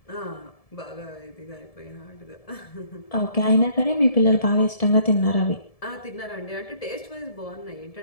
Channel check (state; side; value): late; right; 1.7 ms